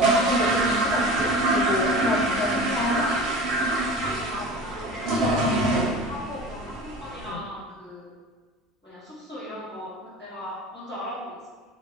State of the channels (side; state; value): both; normal; correlation 0.35